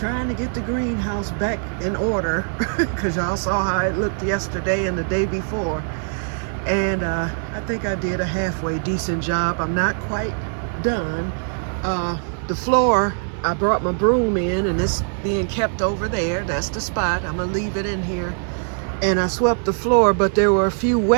to get the greenhouse back in order because y'all saw how it looked yesterday and the day before. And I think I did a halfway decent job. I'm not quite done. The floor, I brought my broom in and it's being kept over there. That's the spot. I'm gonna leave it in here. And I swept the floor, but there were a few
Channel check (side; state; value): left; silent; 64 dB below the other